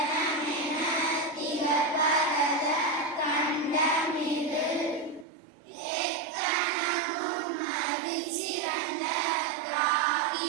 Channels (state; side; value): drops out; left; at 5.2 s